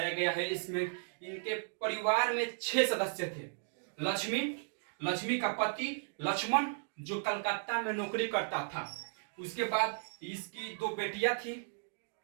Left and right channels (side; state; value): left; silent; digital silence